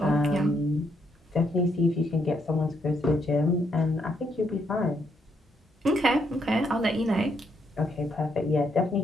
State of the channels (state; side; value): normal; both; correlation 0.75